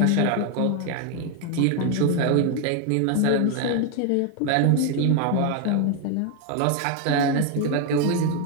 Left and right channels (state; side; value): different; both; correlation 0.01